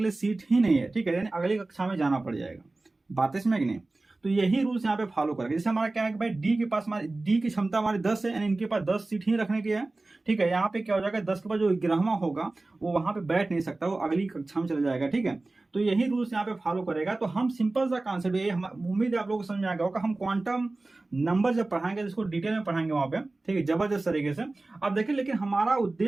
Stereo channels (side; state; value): left; quieter; 3.1 dB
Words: लिए सीट ही नहीं है। ठीक है, यानी अगली कक्षा में जाना पड़ जाएगा। बातें समझ कि नहीं। तो यही रूल्स यहाँ पे फॉलो करेंगे। जैसे हमारा क्या है कि भाई डी के पास, हमारी डी की क्षमता हमारी 10 है, यानी इनके पास 10 सीट ही रखने की है। ठीक है, यहाँ पे क्या हो जाएगा, 10 के बाद जो 11वां होगा वो वहां पे बैठ नहीं सकता, वो अगली कक्षा में चला जाएगा। ठीक है, तो यही रूल्स यहाँ पे फॉलो करेगा। तो हम सिंपल सा कॉन्सेप्ट, ये उम्मीद है आप लोगों को समझ में आ गया होगा। हम क्वांटम नंबर जब पढ़ाएंगे इसको डिटेल में पढ़ाएंगे वहां पे, ठीक है, जबरदस्त तरीके से। अब देखिए, लेकिन हमारा